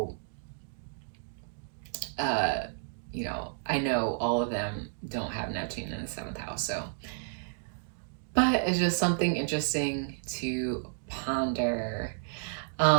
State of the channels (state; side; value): silent; left; digital silence